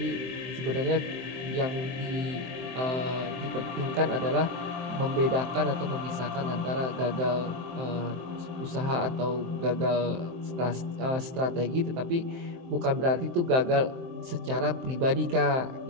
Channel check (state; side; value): late; left; 23 ms